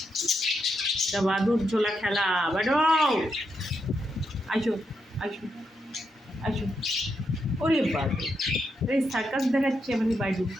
এটা বাদুর ঝোলা খেলা। বাডু আসো আসো আসো। ওরে বাবু, এই সার্কাস দেখাচ্ছে আমাদের বাডু,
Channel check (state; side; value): normal; both; correlation 0.82